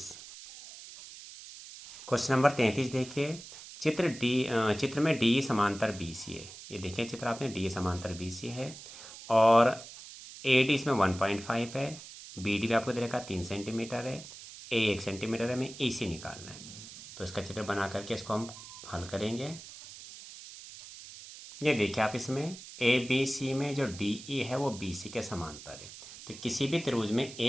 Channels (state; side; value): noise; right; hiss, 15 dB below the sound